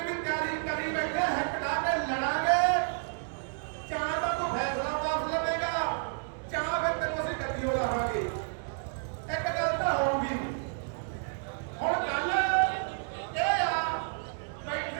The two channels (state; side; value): silent; left; 57 dB below the other